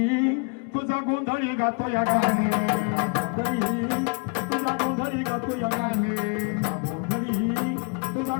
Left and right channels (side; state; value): right; quieter; 34.5 dB